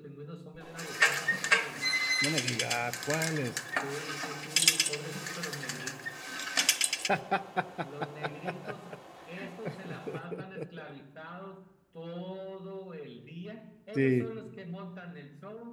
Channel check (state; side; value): identical; both; correlation 1.00